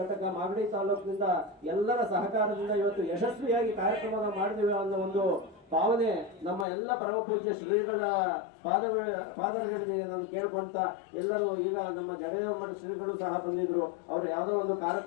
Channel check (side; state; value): right; drops out; at 6.7 s